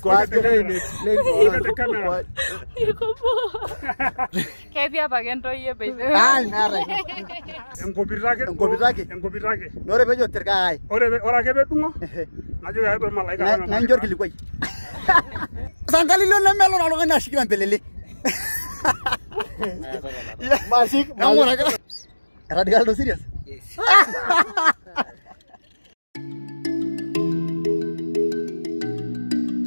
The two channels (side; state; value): both; inverted; correlation -1.00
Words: Look at the camera. Kevia pagento ye baby. Ah, nara. Enkopirake. Nore bejo terkai. Ora kebe tungo. Najo ya be malaika. Na njor kilikwai. Sangalilo na melo na longana shikira mpelele. Masik. Namora ka. Radical do serious? Yes.